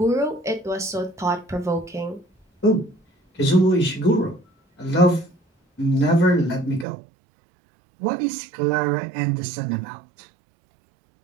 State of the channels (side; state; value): left; drops out; at 6.9 s